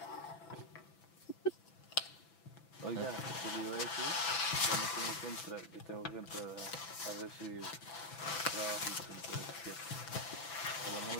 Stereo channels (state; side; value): late; right; 6.0 ms